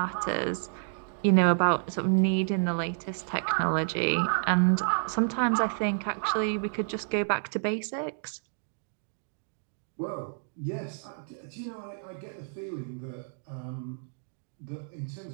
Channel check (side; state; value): left; silent; digital silence